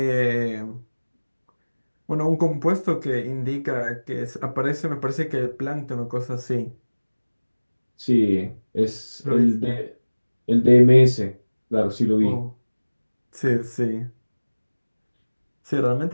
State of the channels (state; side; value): inverted; both; correlation -1.00